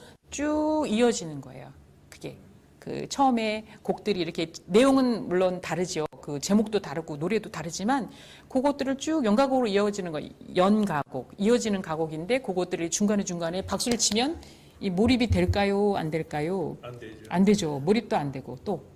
쭉 이어지는 거예요. 그게. 그 처음에 곡들이 이렇게 내용은 물론 다르죠. 그 제목도 다르고 노래도 다르지만 그것들을 쭉 연가곡으로 이어지는 거 연가곡 이어지는 가곡인데 그것들이 중간에 박수를 치면 이 몰입이 될까요? 안 될까요? 안 되죠. 안 되죠. 몰입도 안 되고 또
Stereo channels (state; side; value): identical; both; correlation 1.00